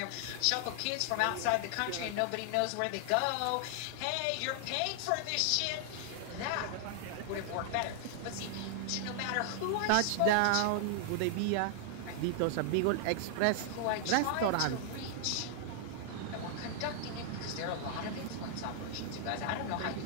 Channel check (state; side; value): different; both; correlation 0.00